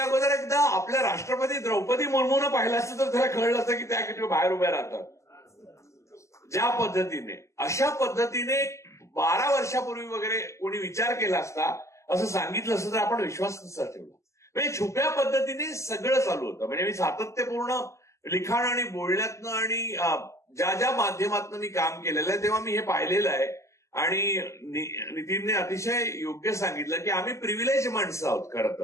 अगोदर एकदा आपल्या राष्ट्रपती द्रौपदी मुर्मूनं पाहिलं असतं तर त्याला कळलं असतं की त्या किती बाहेर उभ्या राहतात. ज्या पद्धतीने, अशा पद्धतीने 12 वर्षापूर्वी वगैरे कोणी विचार केला असता, असं सांगितलं असतं तर आपण विश्वास नसता ठेवला. म्हणजे छुप्या पद्धतीने सगळं चालू होतं. म्हणजे मी सातत्यपूर्ण लिखाण आणि बोलण्यातनं आणि ज्या माध्यमातनं मी काम केलेलं आहे तेव्हा मी हे पाहिलेलं आहे. आणि नितीनने अतिशय योग्य सांगितलं की आम्ही प्रिव्हिलेज माणसं आहोत खरं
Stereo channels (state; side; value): late; right; 0.14 ms